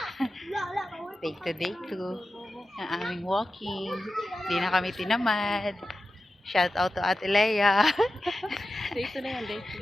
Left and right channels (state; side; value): normal; both; correlation 0.93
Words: Day 2. Ang aming walking. Hindi na kami tinamad. Shout out to Ate Leia. Day 2 na yan, day